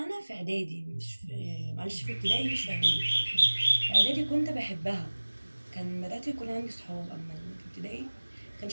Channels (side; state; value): both; inverted; correlation -1.00